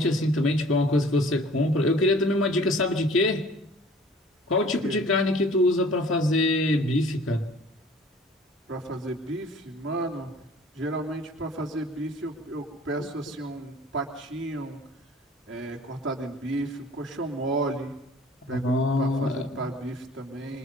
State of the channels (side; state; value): both; normal; correlation 0.50